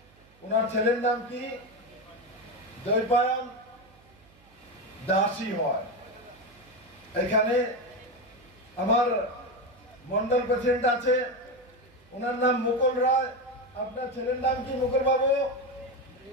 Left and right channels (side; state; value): right; noise; hum, 29 dB below the sound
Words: ওনার ছেলের নাম কি দৈপায়ন দাসী হয় এখানে আমার মন্ডল প্রেসিডেন্ট আছে ওনার নাম মুকুল রায় আপনার ছেলের নাম কি মুকুল বাবু